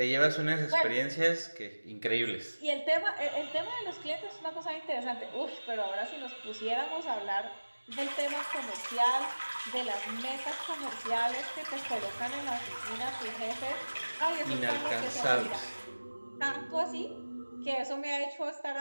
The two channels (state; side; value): inverted; both; correlation -1.00